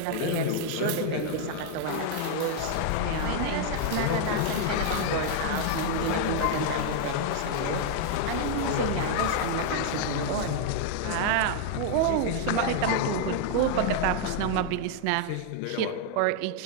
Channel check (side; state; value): both; different; correlation 0.00